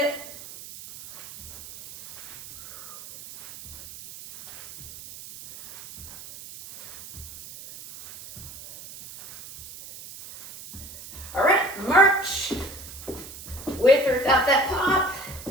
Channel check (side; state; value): right; noise; hiss, 15 dB below the sound